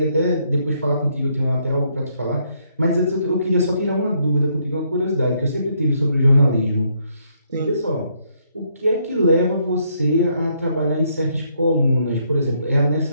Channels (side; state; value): both; inverted; correlation -0.72